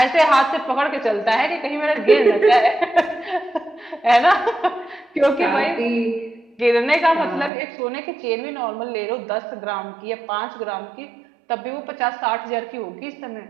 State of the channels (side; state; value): left; drops out; at 7.5 s